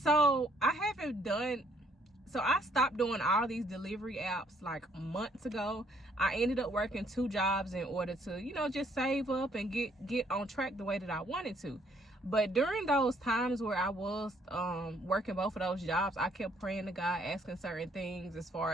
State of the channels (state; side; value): normal; both; correlation 0.66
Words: So I stopped doing all these delivery apps like months ago. I ended up working 2 jobs in order to, just save up and get on track the way that I wanted to. But during those times where I was working both of those jobs, I kept praying to God, asking certain things as